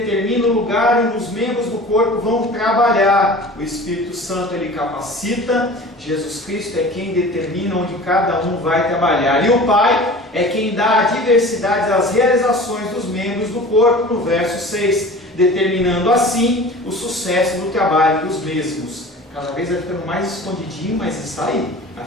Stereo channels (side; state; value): both; normal; correlation 0.40